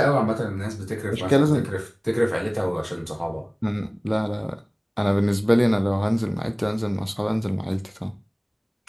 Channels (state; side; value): identical; both; correlation 1.00